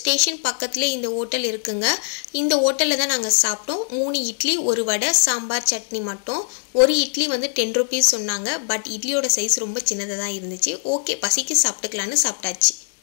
பக்கத்தில் இந்த ஹோட்டல் இருக்குங்க. இந்த ஹோட்டலில் தான் நாங்கள் சாப்பிட்டோம். 3 இட்லி, 1 வடை, சாம்பார், சட்னி மட்டும். ஒரு இட்லி வந்து 10 rupees சொன்னாங்க. பட் இட்லியோட சைஸ் ரொம்ப சின்னதாக தான் இருந்துச்சு. ஓகே, பசிக்கு சாப்பிட்டுக்கலான்னு சாப்பிட்டாச்சு.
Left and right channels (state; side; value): silent; right; 62 dB below the other